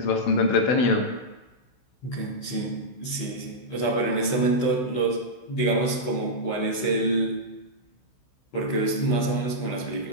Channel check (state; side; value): late; right; 16 ms